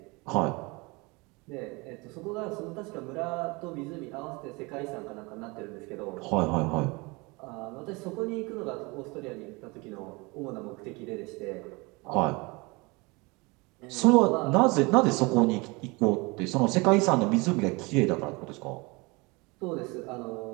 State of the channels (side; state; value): left; quieter; 26.2 dB